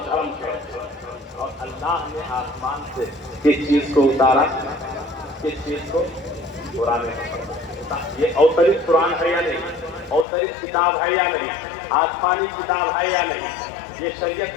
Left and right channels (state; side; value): drops out; right; at 10.2 s